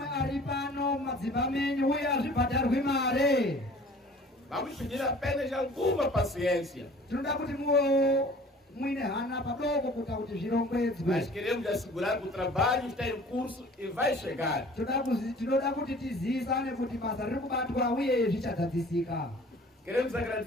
Vamos pedir apenas alguma paciência. Mas queremos assegurar que o trabalho está em curso e vai chegar. Queremos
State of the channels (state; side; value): normal; both; correlation 0.48